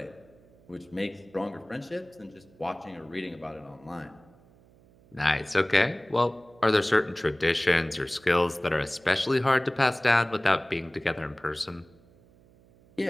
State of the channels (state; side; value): noise; right; hum, 28 dB below the sound